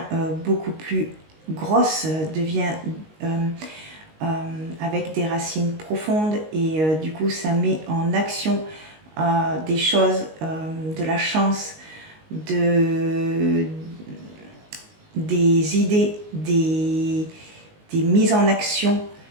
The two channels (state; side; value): late; left; 19 ms